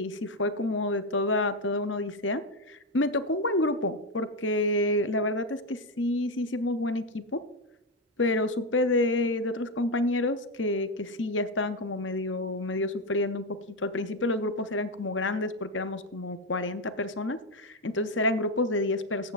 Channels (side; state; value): both; normal; correlation 0.09